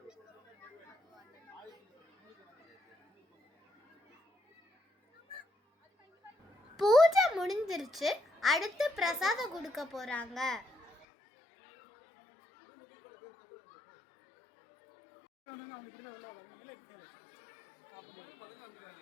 பூஜை முடிஞ்சிருச்சு. அடுத்து பிரசாதம் கொடுக்க போறாங்க.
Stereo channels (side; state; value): right; drops out; at 11.1 s